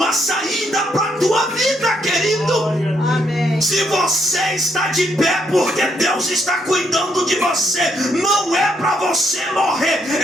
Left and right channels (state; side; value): normal; both; correlation 0.75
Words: saída para a tua vida, querido. Amém. Se você está de pé, porque Deus está cuidando de você. Não é para você morrer,